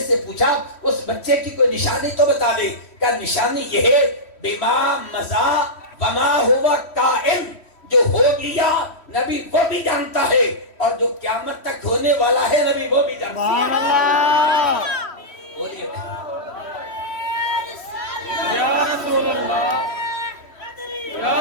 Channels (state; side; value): late; right; 3.1 ms